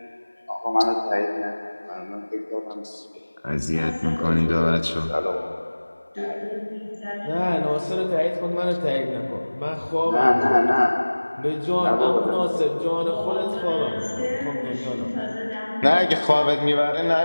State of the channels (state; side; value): inverted; both; correlation -1.00